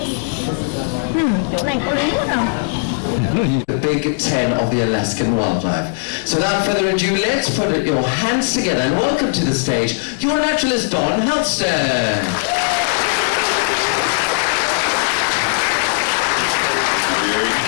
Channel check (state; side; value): silent; right; digital silence